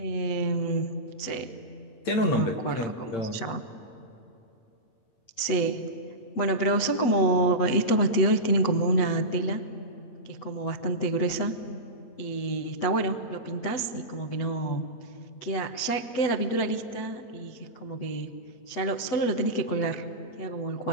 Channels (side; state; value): right; late; 8.1 ms